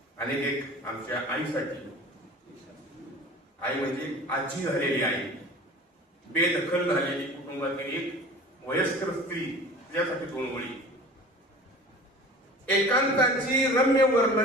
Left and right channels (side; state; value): both; normal; correlation 0.41